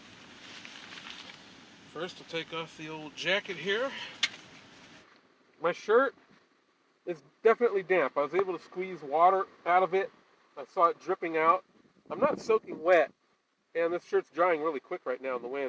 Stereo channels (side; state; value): both; identical; correlation 1.00